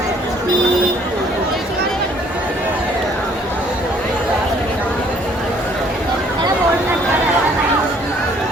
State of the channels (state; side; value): normal; both; correlation 0.61